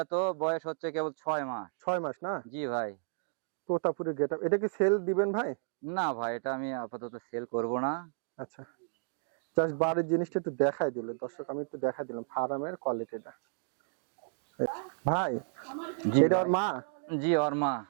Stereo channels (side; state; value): left; silent; digital silence